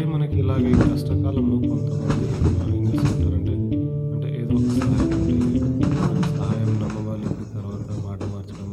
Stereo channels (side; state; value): both; identical; correlation 1.00